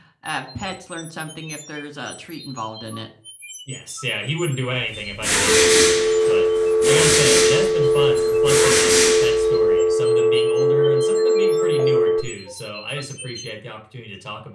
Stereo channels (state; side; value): identical; both; correlation 1.00